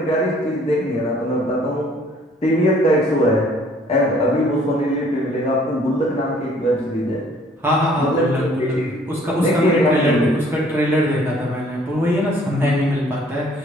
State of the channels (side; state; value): both; normal; correlation 0.58